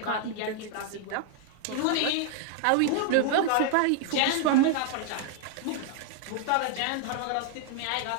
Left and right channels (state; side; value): different; both; correlation 0.00